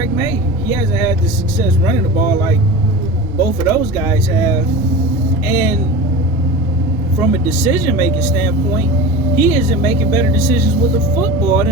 May. He hasn't had the success running the ball like both of those guys have. And from a decision-making standpoint, he isn't making better decisions with the football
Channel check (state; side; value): normal; both; correlation 0.32